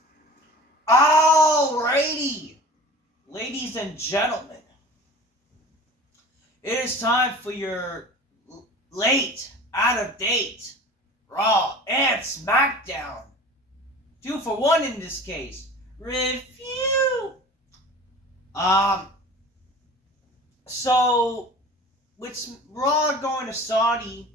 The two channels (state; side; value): normal; both; correlation 0.40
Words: Alrighty, ladies and gentlemen, it is time for your late, out of date, Raw and Smackdown. 2 for 1 in this case. Review. Um, so with Raw going to Saudi,